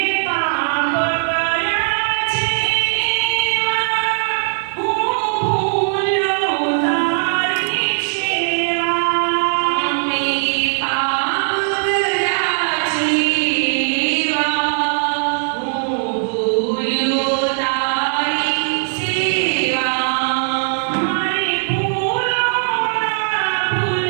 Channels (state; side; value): silent; left; digital silence